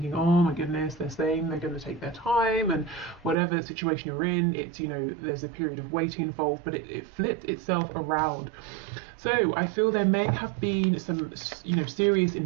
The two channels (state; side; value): drops out; left; at 3.4 s